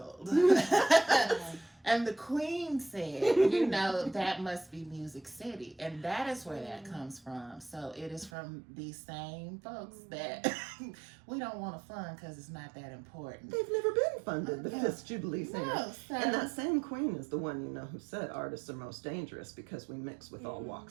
And the Queen said, that must be Music City. And that is where that comes from. So it is from these same folks that we don't want to fund because it's not that important. They've never been funded, the Fisk Jubilee Singers. No, and that same Queen is the one, who said artists are most dangerous because we mix with all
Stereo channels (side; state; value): left; drops out; at 8.3 s